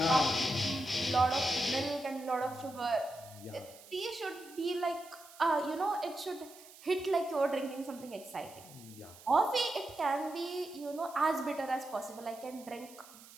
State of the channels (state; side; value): noise; right; hiss, 20 dB below the sound